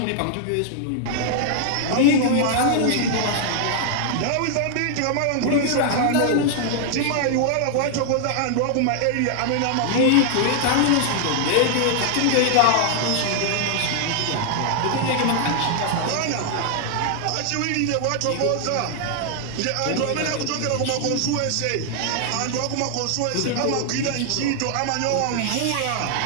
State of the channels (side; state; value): both; different; correlation 0.00